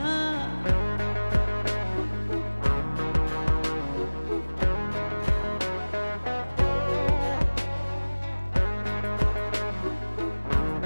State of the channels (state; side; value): inverted; both; correlation -1.00